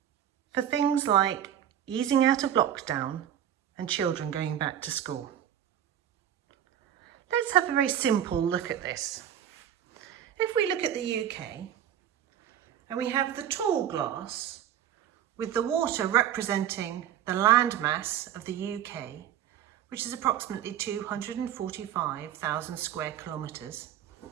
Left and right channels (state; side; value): quieter; left; 10.3 dB